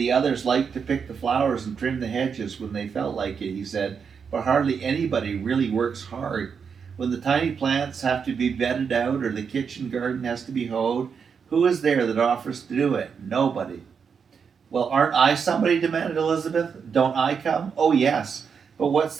others liked to pick the flowers and trim the hedges when they felt like it, he said, but hardly anybody really works hard. When the tiny plants have to be bedded out or the kitchen garden has to be hoed, who is there that offers to do it? Nobody. Well, aren't I somebody? Demanded Elizabeth. Don't I come? Oh, yes. But what's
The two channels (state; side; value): quieter; left; 6.4 dB